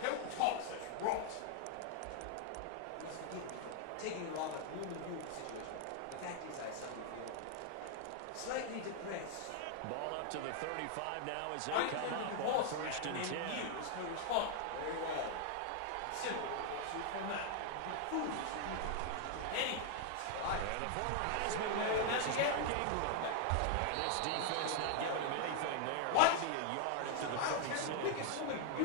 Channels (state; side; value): different; both; correlation 0.00